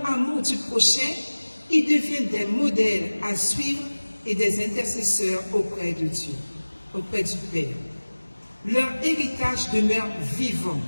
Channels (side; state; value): both; inverted; correlation -1.00